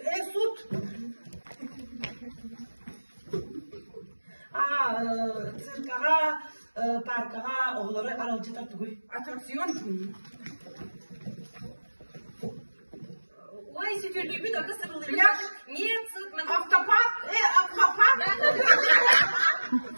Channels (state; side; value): inverted; both; correlation -1.00